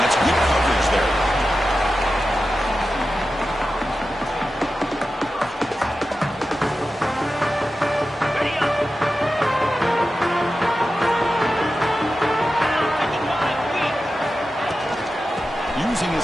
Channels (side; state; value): both; normal; correlation 0.92